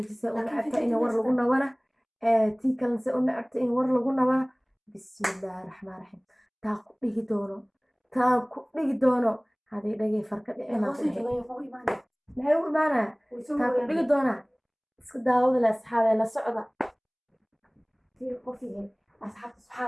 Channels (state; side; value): identical; both; correlation 1.00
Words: u nacabta in war lagu nawana tii kalense u nacabta in war lagu nawana bismillaahi raxmaan raxiim taa ku dhigi doono haday dhagay farka dhicina maxay u imaanaya taa ku dhigi doonaa iska daawada la asxaabey la socda tii qofiga asxaabta